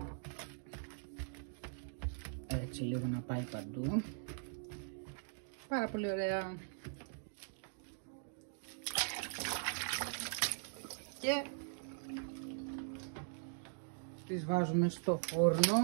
Έτσι λίγο να πάει παντού. Πάρα πολύ ωραία. Και τις βάζουμε στο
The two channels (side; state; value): left; silent; digital silence